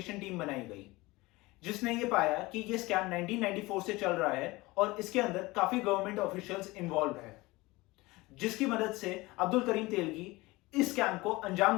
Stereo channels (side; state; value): right; quieter; 21.4 dB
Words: टीम बनाई गई जिसने ये पाया कि ये स्कैम 1994 से चल रहा है और इसके अंदर काफी गवर्नमेंट ऑफिशियल्स इन्वॉल्व है, जिसकी मदद से अब्दुल करीम तेलगी इस स्कैम को अंजाम